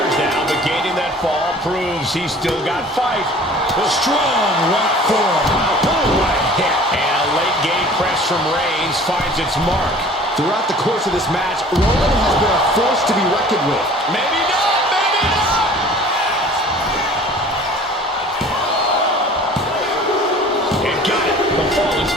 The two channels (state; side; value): normal; both; correlation 0.47